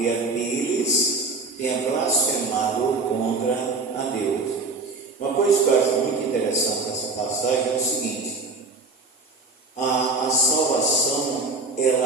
deles, tenha blasfemado contra a Deus. Uma coisa que eu acho muito interessante nessa passagem é o seguinte: a salvação,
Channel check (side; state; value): left; quieter; 3.7 dB